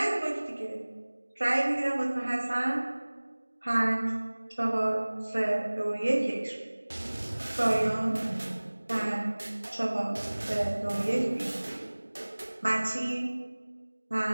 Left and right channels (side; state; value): both; inverted; correlation -1.00